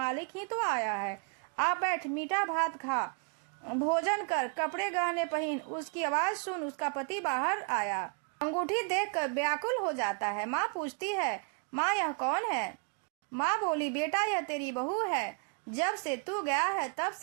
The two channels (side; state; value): left; quieter; 37.3 dB